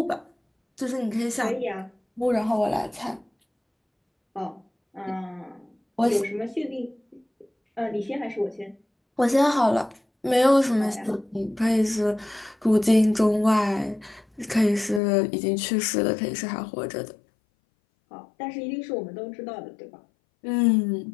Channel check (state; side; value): drops out; right; at 15.0 s